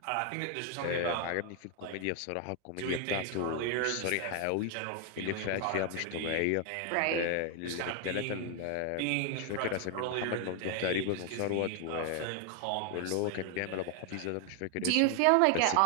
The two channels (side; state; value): both; different; correlation 0.00